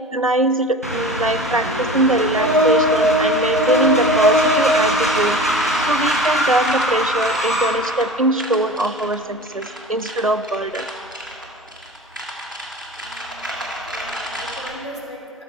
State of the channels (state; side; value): normal; both; correlation 0.35